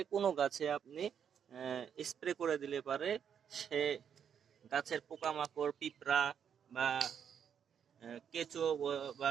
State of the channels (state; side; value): quieter; left; 8.1 dB